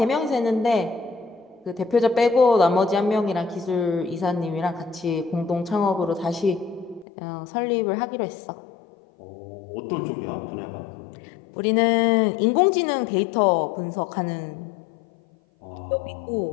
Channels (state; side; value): drops out; right; at 7.1 s